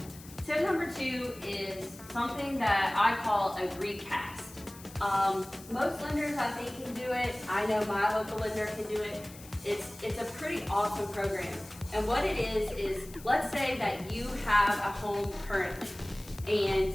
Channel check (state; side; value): noise; left; hiss, 18 dB below the sound